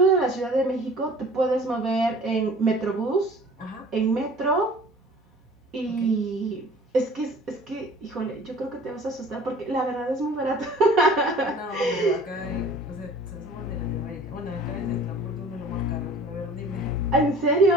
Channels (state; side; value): normal; both; correlation 0.47